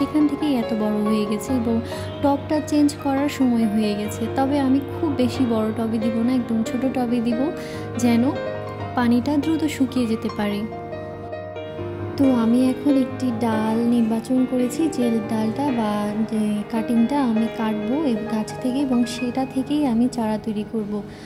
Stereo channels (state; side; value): identical; both; correlation 1.00